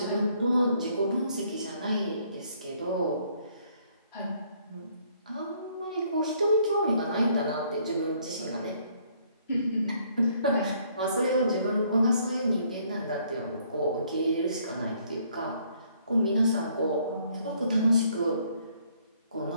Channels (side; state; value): both; inverted; correlation -0.66